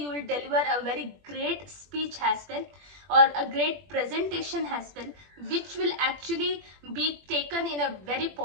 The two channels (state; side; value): late; left; 21 ms